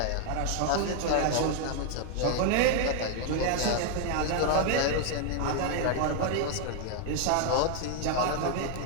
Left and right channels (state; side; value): different; both; correlation 0.00